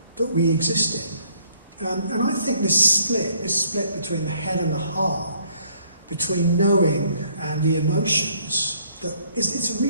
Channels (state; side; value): inverted; both; correlation -0.63